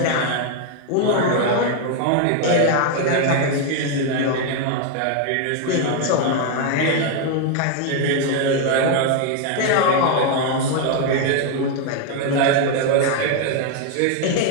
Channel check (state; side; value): different; both; correlation 0.01